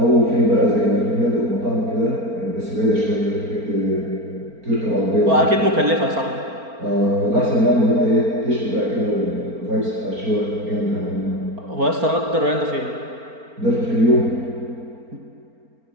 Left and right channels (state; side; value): late; left; 4.4 ms